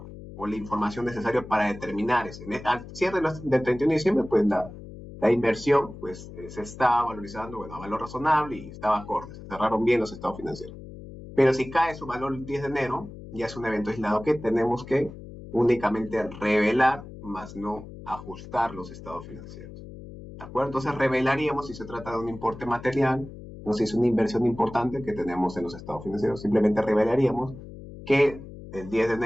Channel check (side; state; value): left; noise; hum, 14 dB below the sound